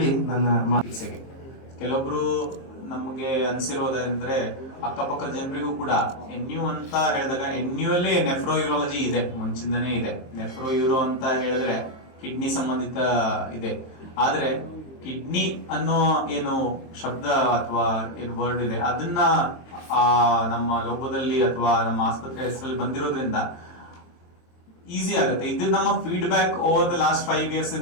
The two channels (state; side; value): late; right; 23 ms